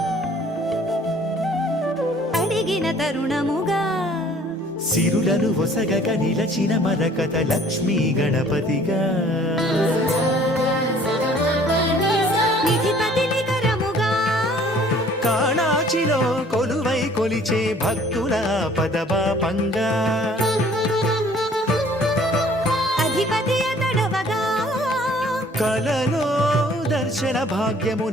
అడిగిన తరుణముగా సిరులను ఒసగక నిలచిన మరకత లక్ష్మీ గణపతిగా నిధిపతిని కరముగా కాణాచిలో కొలువై కొలిచే భక్తుల పదపాపంగా అధిపతి అతడవగా కలలో దర్శన భాగ్యము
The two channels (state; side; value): normal; both; correlation 0.55